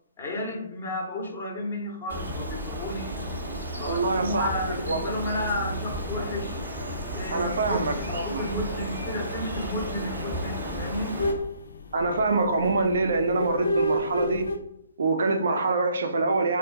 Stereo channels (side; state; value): both; inverted; correlation -0.62